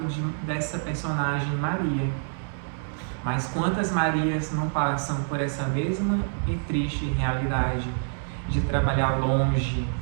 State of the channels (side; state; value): left; silent; digital silence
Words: dessa personagem Maria. Mas quantas Marias não passam por essa mesma e triste realidade de trabalhar longe,